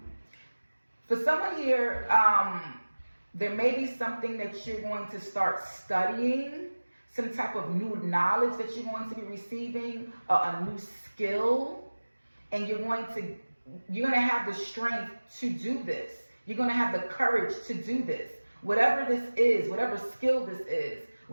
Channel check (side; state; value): both; inverted; correlation -1.00